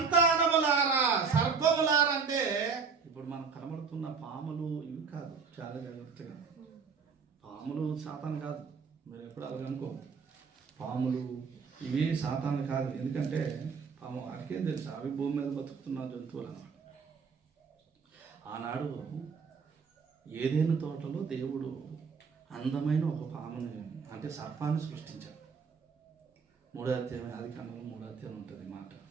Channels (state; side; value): quieter; left; 5.5 dB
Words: సర్పములారా అంటే ఇప్పుడు మనకు కనబడుతున్న పాములు ఇవి కాదు. చాలా జాగ్రత్తగా, పాములు సాతాను కాదు. మీరు ఎప్పుడు అలాగ అనుకో, పాములు ఇవి సాతాను కాదు. ఎందుకంటే పాము వాడికేం తెలుసు, అవి భూమి మీద బతుకుతున్న జంతువులు అన్నమాట. ఆనాడు ఏదైనా తోటలో దేవుడు అందమైన ఒక పాముని అంటే సర్పాన్ని సృష్టించాడు. 3వ అధ్యాయం ఆదికాండం 3వ అధ్యాయం ఉంటుంది మాట,